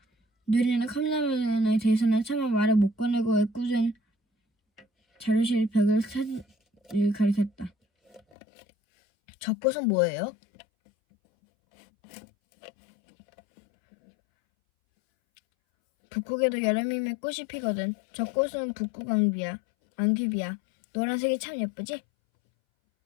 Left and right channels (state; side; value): drops out; right; at 8.2 s